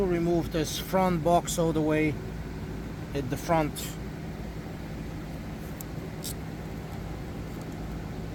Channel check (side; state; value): both; identical; correlation 1.00